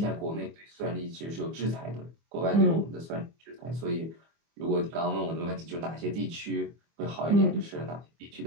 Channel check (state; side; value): late; left; 24 ms